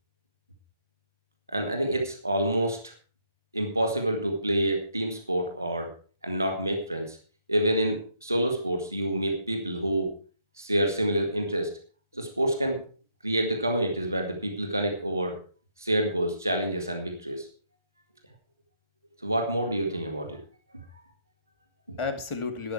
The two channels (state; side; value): inverted; both; correlation -0.74